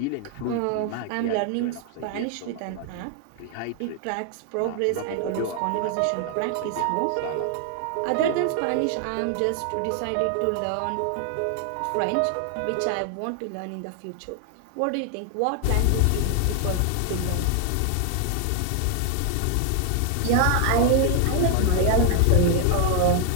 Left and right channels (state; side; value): different; both; correlation 0.00